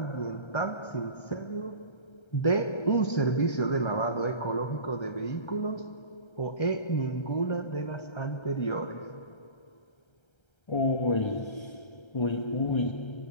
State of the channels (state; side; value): late; right; 1.3 ms